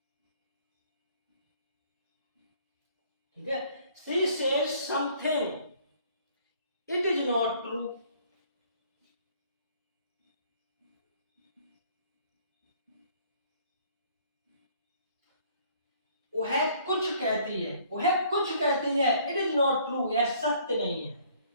ठीक है, she says something, it is not true. वह कुछ कहती है, वह कुछ कहती है, इट इज नॉट ट्रू, यह सत्य नहीं है।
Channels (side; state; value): both; inverted; correlation -0.59